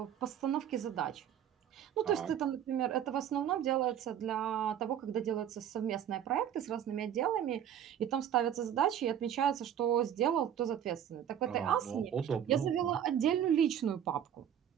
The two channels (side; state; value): left; quieter; 9.8 dB